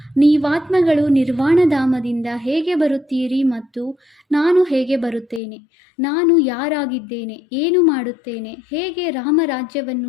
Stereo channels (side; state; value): right; drops out; at 5.4 s